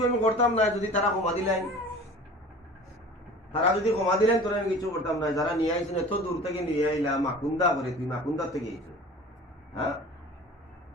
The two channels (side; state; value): both; normal; correlation 0.41